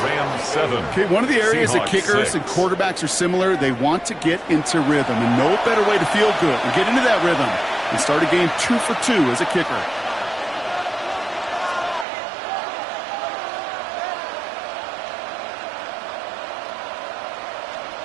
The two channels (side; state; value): left; drops out; at 12.1 s